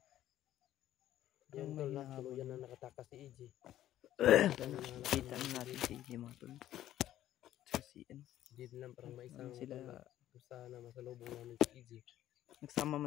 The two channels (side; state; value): right; quieter; 12.8 dB